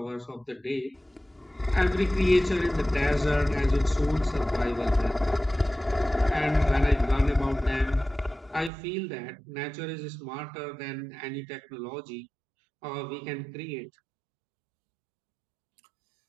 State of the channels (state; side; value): drops out; left; at 8.7 s